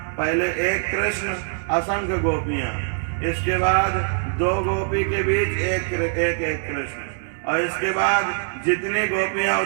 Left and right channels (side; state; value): left; silent; digital silence